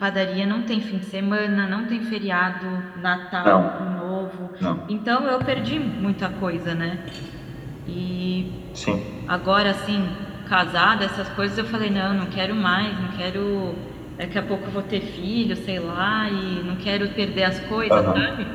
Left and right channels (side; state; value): both; identical; correlation 1.00